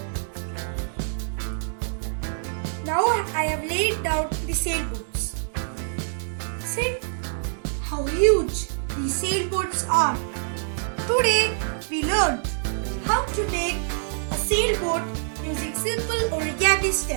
Now I have laid down the sailboats. See how huge these sailboats are. Today we learned how to make a sailboat using simple origami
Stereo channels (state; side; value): silent; left; digital silence